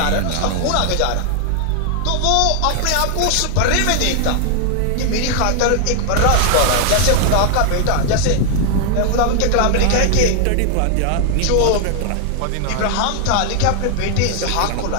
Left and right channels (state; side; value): different; both; correlation 0.00